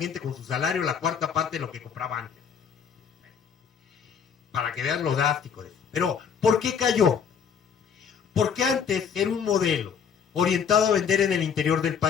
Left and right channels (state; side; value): quieter; right; 7.0 dB